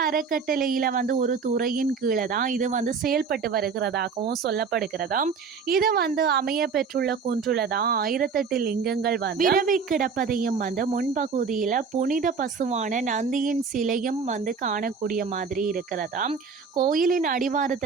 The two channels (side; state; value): left; quieter; 5.5 dB